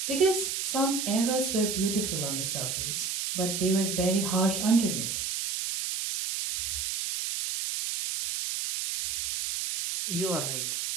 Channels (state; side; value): noise; right; hiss, 2 dB below the sound